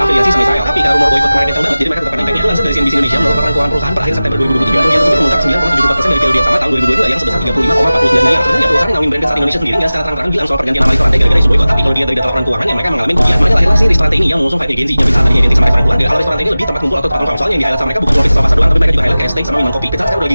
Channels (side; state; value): both; inverted; correlation -0.97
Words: sama Israel. Tapi karena rumor boykot kemarin kencang banget, jadi mereka tetap impactnya. Lansir dari CNBC Indonesia, menurut laporan keuangan perusahaan per akhir September 2023, kerugian tersebut memuncak 9,74% dari periode yang sama tahun 2022 yang sebesar 35,49 miliar. Sebenarnya perusahaan ngawin brand Pizza Hut Indonesia sendiri nggak secara terang-terangan bilang soal pergantian nama restoran gara-gara isu boykot. Tapi kalau dilihat dari data laporan keuangan yang mereka mengalami kerugian, makanya lahirlah si restoran ini yang mengusung fight agency. Yang Pizza Hut tadinya identik sama restoran keluarga, kalau restoran ini lebih tempat kumpul atau tempat nongkrong. Soalnya yang di-highlight sama mereka bukan cuma pizza pasar doang, tapi mereka juga highlight kayak steak sama minuman kopi. Pizza Hut sekarang udah lagi